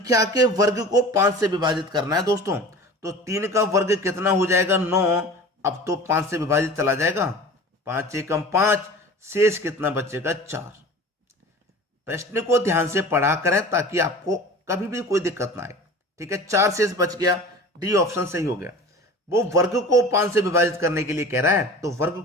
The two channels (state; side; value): normal; both; correlation 0.39